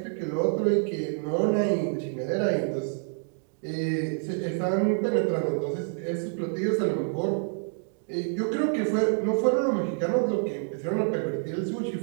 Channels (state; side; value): silent; left; 60 dB below the other